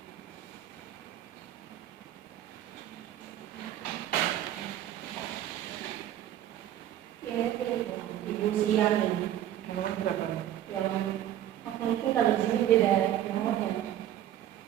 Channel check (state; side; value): quieter; left; 12.1 dB